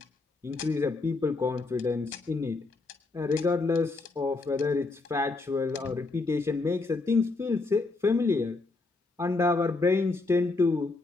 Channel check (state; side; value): quieter; right; 3.5 dB